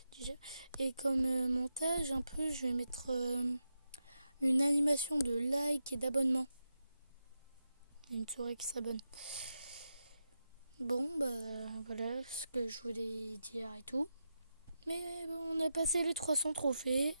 déjà. Et comme montage un peu, je vais mettre une animation de like et d'abonnement. Une souris qui s'abonne. Bon bah voilà ce que je voulais dire et tout. Mais bon, on a passé les 300 trophées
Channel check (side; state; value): both; inverted; correlation -0.87